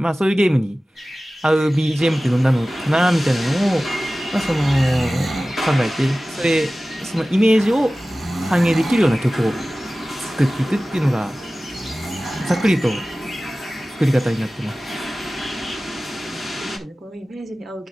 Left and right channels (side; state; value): both; normal; correlation 0.96